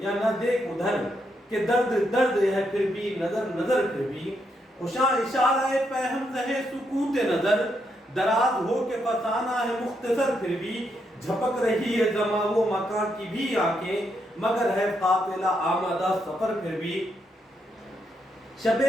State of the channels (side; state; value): both; normal; correlation 0.79